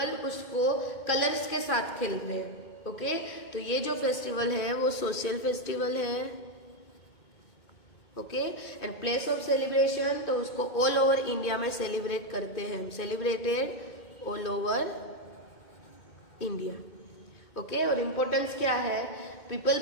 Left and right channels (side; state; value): right; late; 2.2 ms